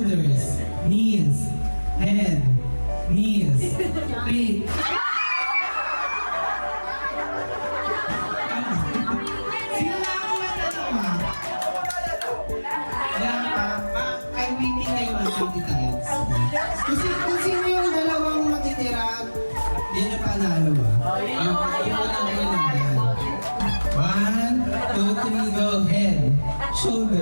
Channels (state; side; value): inverted; both; correlation -1.00